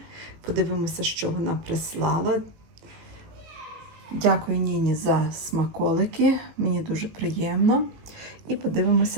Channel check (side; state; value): left; late; 18 ms